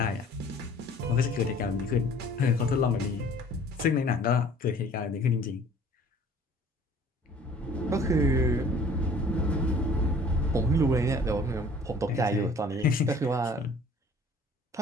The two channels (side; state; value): both; normal; correlation 0.51